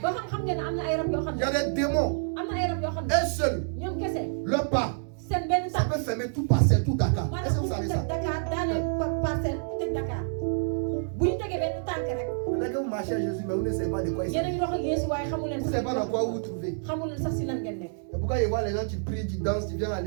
ba xam ngeen ne am na ay rab yoo xam Il ne. y a des démons. am na ay rab yoo xam ne. Un seul, ñoom kese. le pas, seen benn ça tànk. peut fermer tout Parcelles, tout Dakar. Est-ce que maanaam vous bu savez ñu ça? teg Dakar daaneel parcelle tëj Dakar. bu ñu tegee benn tànk rek. Peut-être que vous marchez à Jésus, mais vous ne savez pas de quoi il yéen a s'agit. ngi dox ak Yeesu waaye xamu leen Vous ne savez pas dans quoi vous vous trouvez. xamu leen sax si lan ngeen nekk. Et pourquoi il voit les gens qui prient, qui dansent, qui viennent à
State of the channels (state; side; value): silent; left; digital silence